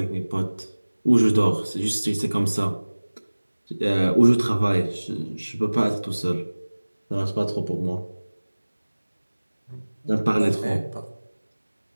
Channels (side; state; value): both; inverted; correlation -1.00